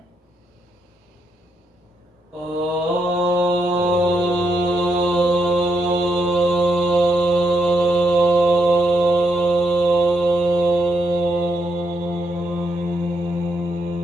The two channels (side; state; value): both; normal; correlation 0.79